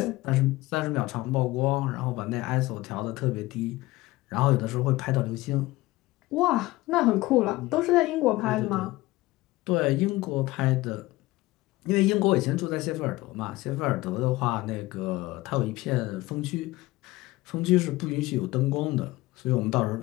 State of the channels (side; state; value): right; quieter; 19.2 dB